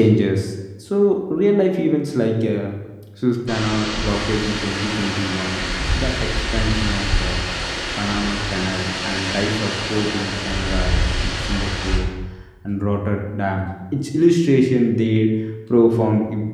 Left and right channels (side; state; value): both; identical; correlation 1.00